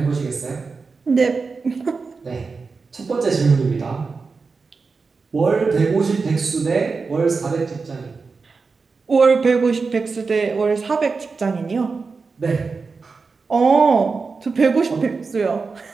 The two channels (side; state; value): left; quieter; 4.6 dB